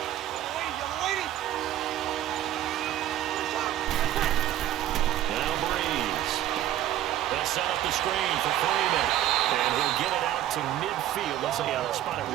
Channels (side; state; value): left; quieter; 12.6 dB